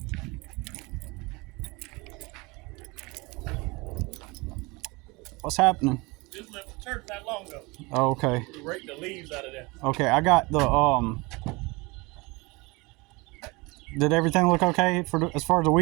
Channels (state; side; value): quieter; left; 25.2 dB